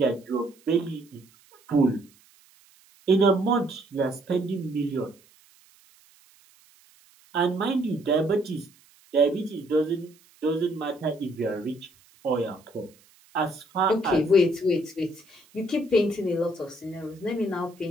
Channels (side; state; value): right; noise; hiss, 29 dB below the sound